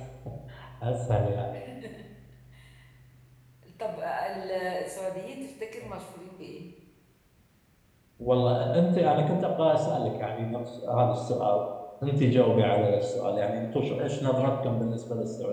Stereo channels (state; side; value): identical; both; correlation 1.00